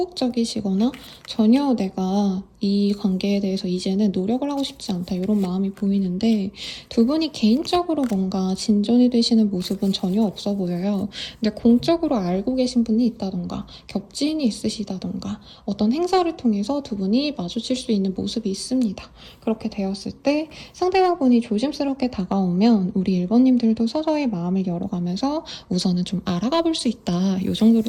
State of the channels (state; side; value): identical; both; correlation 1.00